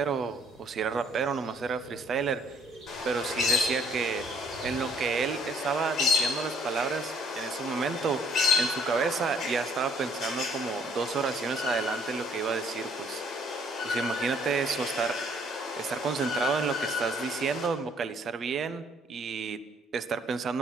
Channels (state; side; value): normal; both; correlation 0.62